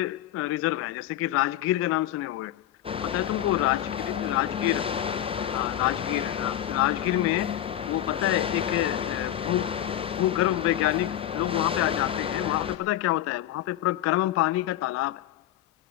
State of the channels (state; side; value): quieter; right; 12.2 dB